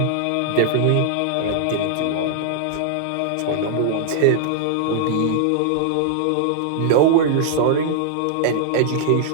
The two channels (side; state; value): both; different; correlation -0.01